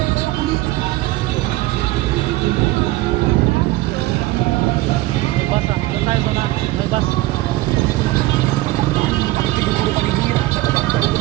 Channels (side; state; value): left; quieter; 18.4 dB